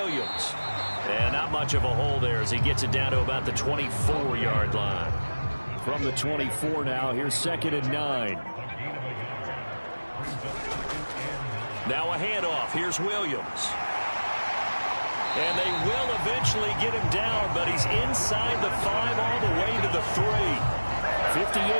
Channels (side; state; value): both; inverted; correlation -1.00